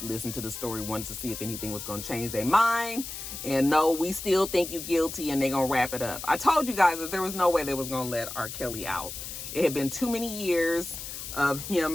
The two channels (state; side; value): noise; left; hiss, 8 dB below the sound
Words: listened to the story once to see if anything was going to change their mind, and no, we still think you guilty, and they're going to wrap it up. I told you guys that there was no way they was going to let RKelly out. It had been too many years of